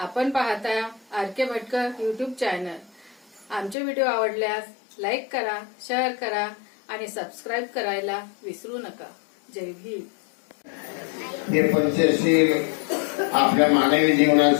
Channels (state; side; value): drops out; right; at 3.8 s